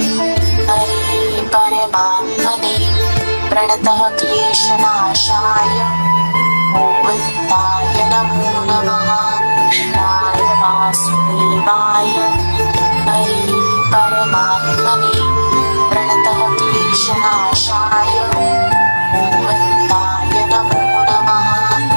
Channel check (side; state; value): both; inverted; correlation -1.00